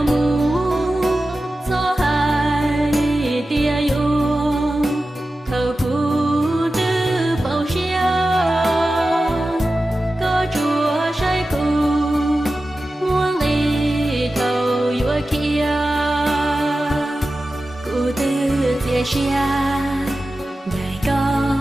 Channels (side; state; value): both; normal; correlation 0.94